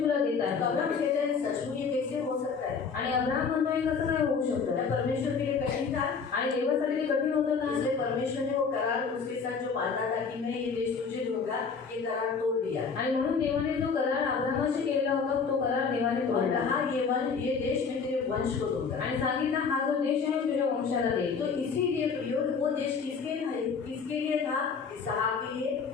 तुला देत तो आहे. अब्राहम कहते हैं सच में ये कैसे हो सकता है? आणि अब्राम म्हणतोय कसं काय होऊ शकतं? क्या परमेश्वर के लिए कठिन था? आणि देवासाठी ते कठीण होतं का? इसलिए परमेश्वर ने वो करार उसके साथ जो बांधा था कि मैं ये देश तुझे दूंगा, ये करार तोड़ दिया आणि म्हणून देवाने जो करार अब्रामाशी केलेला होता तो करार देवाने और तोडला कहा ये देश मैं तेरे वंश को दूंगा। आणि सांगितलं हा जो देश आहे तुझ्या वंशाला देईल. तो इसीलिए प्रयोग वो देश किसके लिए था? इसहाक के लिए,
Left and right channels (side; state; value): right; quieter; 5.5 dB